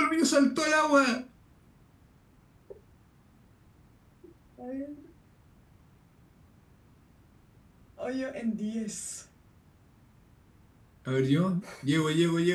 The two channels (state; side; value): identical; both; correlation 1.00